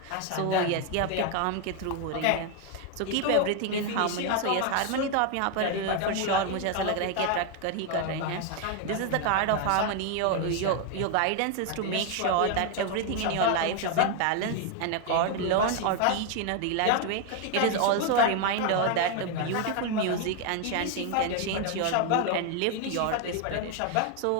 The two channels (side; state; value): both; different; correlation 0.01